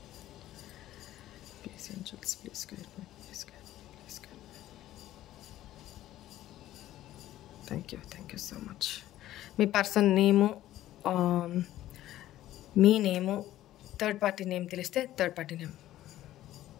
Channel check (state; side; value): quieter; right; 13.9 dB